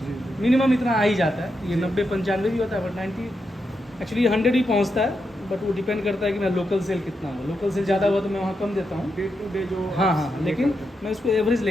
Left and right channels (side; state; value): both; normal; correlation 0.85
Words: जी मिनिमम इतना आ ही जाता है। ये जी। 90-95 भी होता है, बट 90 एक्चुअली 100 ही पहुंचता है। बट वो डिपेंड करता है कि मेरा लोकल सेल कितना हो। लोकल सेल ज़्यादा हुआ तो मैं वहाँ कम देता हूँ। डे टू डे जो हाँ आप हाँ, ये लेकिन करते हैं। मैं उसको एवरेज